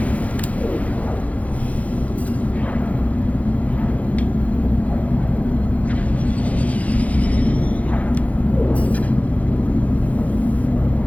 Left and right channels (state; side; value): late; right; 0.068 ms